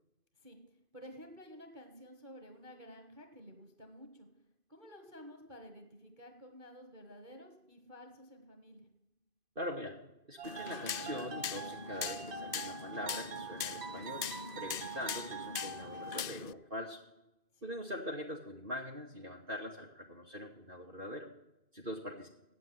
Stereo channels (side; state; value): left; late; 2.5 ms